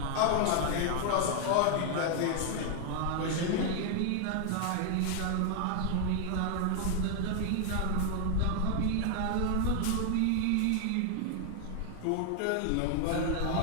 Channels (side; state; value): both; different; correlation 0.00